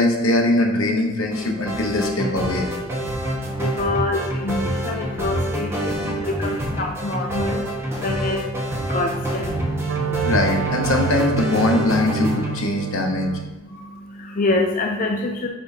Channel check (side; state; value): both; normal; correlation 0.44